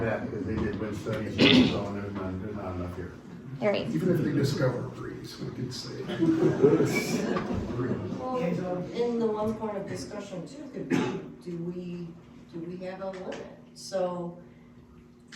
they did wind studies, and so on, there's not enough here. Right. Even if they discover a breeze, we could say. Well, in the one point of discussion too, could be, do we have a limit? So,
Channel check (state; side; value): identical; both; correlation 1.00